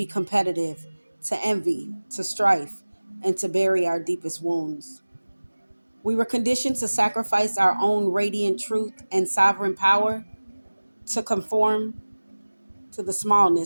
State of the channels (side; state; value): both; inverted; correlation -1.00